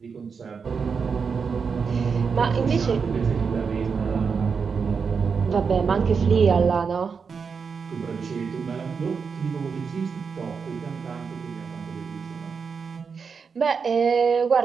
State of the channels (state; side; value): quieter; left; 5.7 dB